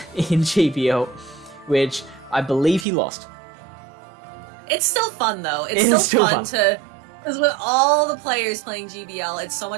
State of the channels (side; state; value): left; drops out; at 2.9 s